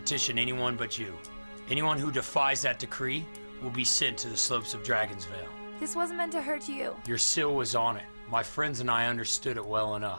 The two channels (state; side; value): inverted; both; correlation -1.00